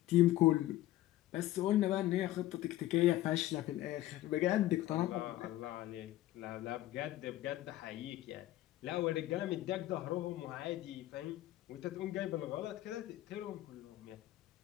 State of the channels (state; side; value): quieter; right; 15.4 dB